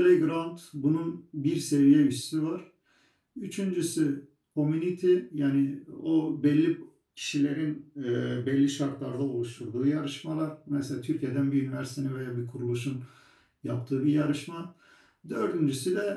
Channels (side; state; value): both; identical; correlation 1.00